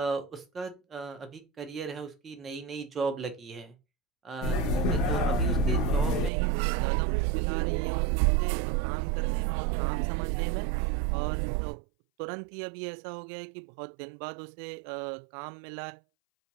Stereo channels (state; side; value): drops out; left; at 6.3 s